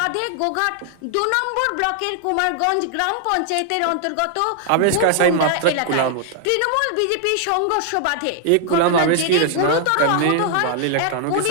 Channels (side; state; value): both; different; correlation 0.00